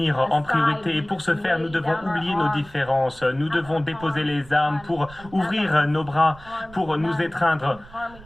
en priorité et pour ce faire, nous devons oublier nos différences. Nous devons déposer les armes pour ouvrir nos bras, pour nous étreindre,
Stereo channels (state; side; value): noise; right; rumble, 21 dB below the sound